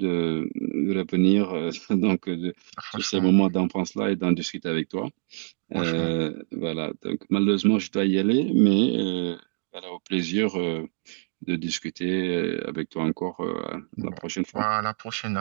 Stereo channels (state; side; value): silent; left; digital silence